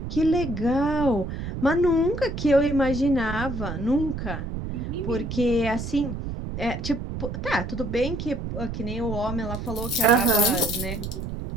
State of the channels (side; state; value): right; noise; rumble, 6 dB below the sound